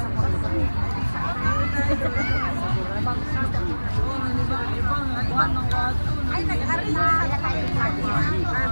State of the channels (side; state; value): both; inverted; correlation -1.00